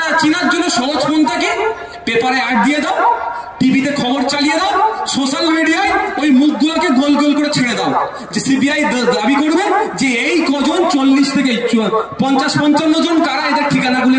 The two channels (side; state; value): both; identical; correlation 1.00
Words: চিনার জন্য সহজ পন্থাকে পেপারে অ্যাড দিয়ে দাও, টিভিতে খবর চালিয়ে দাও, সোশ্যাল মিডিয়ায় ওই মুখগুলোকে গোল গোল করে ছেড়ে দাও, যে সিবিআই দাবি করবে যে এই কজন 40 থেকে 50-55 জন কারা, এদের ঠিকানাগুলো